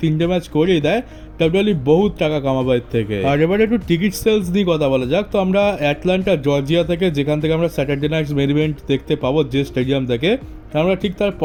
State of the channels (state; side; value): identical; both; correlation 1.00